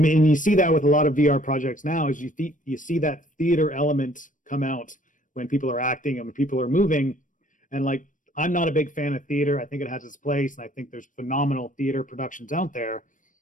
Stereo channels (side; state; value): right; late; 0.38 ms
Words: you see that with a lot of VR projects now, is you see that theater element come out when people are acting and when people are moving. And like, I'm not a big fan of theater. I think it has its place, and I think there's phenomenal theater productions out there.